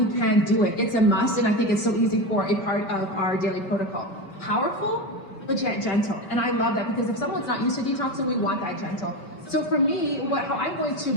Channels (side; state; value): right; late; 5.2 ms